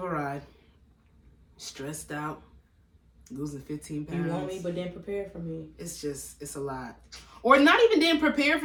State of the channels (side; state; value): both; identical; correlation 1.00